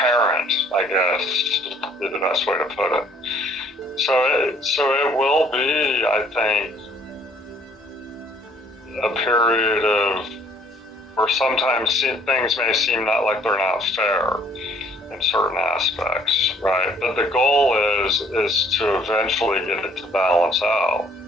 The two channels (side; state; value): both; normal; correlation 0.60